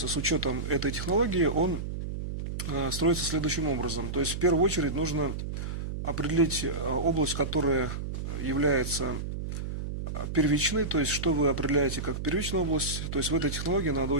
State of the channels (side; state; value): right; noise; hum, 5 dB below the sound